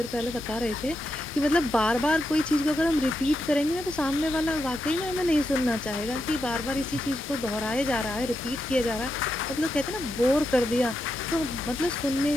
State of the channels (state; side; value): normal; both; correlation 0.85